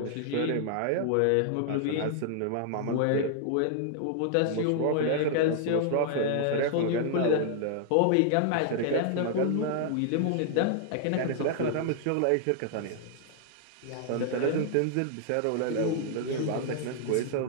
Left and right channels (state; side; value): different; both; correlation -0.01